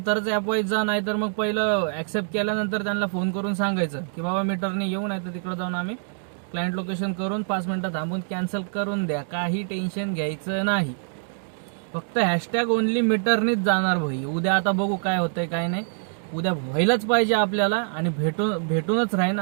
तरच ॲप वाईज जा, नाही तर मग पहिलं ॲक्सेप्ट केल्यानंतर त्यांना फोन करून सांगायचं की बाबा मीटरने येऊ, नाही तर तिकडे जाऊन आम्ही क्लायंट लोकेशन करून 5 मिनिटं थांबून कॅन्सल करून द्या. काही टेन्शन घ्यायचं नाही. फक्त हॅशटॅग ओनली मीटरनीच जाणार भाई. उद्या आता बघू काय होतंय काय नाही. उद्या व्हायलाच पाहिजे आपल्याला आणि भेटूनच राहीन,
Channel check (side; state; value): left; silent; digital silence